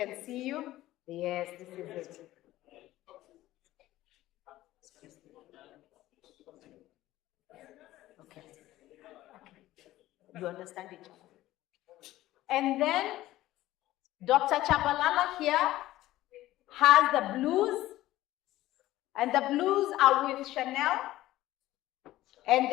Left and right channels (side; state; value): right; quieter; 15.6 dB